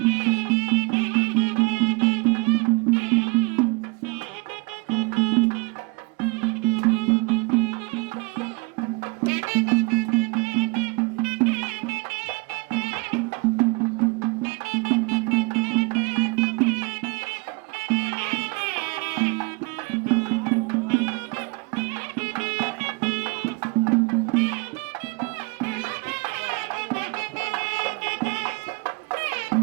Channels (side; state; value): left; quieter; 29.1 dB